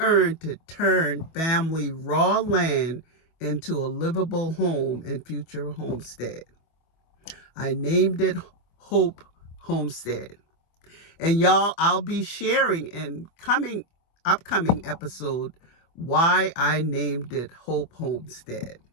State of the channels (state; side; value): late; right; 25 ms